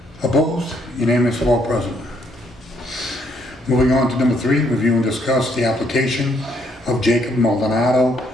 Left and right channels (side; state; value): both; normal; correlation 0.70